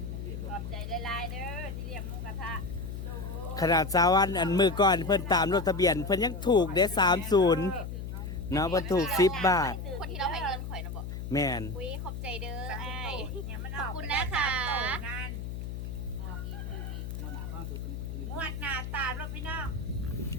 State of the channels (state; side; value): noise; left; hum, 6 dB below the sound